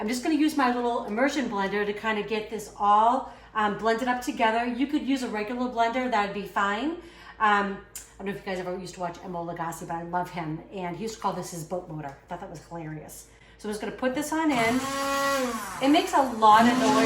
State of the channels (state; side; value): identical; both; correlation 1.00